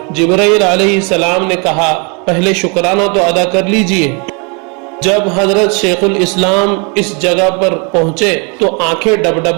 جبرائیل علیہ السلام نے کہا پہلے شکرانہ تو ادا کر لیجئے۔ جب حضرت شیخ الاسلام اس جگہ پر پہنچے تو آنکھیں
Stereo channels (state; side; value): quieter; left; 33.9 dB